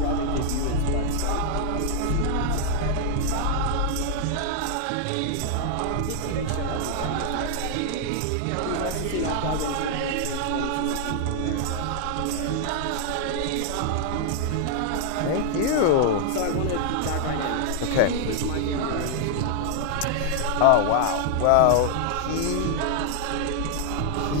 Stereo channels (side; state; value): both; different; correlation 0.00